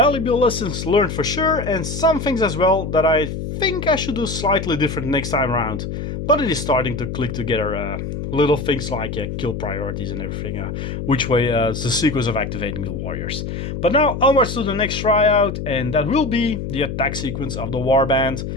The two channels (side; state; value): left; noise; hum, 5 dB below the sound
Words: lessons learned for sure, and some things as well that I think I should do slightly different next time around. But it is starting to click together, little things like kill priorities and everything, which way the sequence of activating the warriors. But now onwards to the next tryout, and that will be the attack sequence of the warband